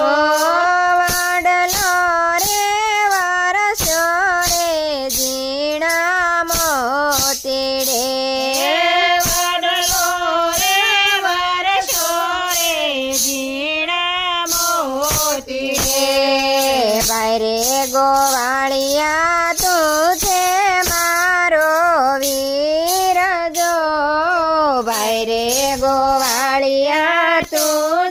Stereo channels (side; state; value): both; identical; correlation 1.00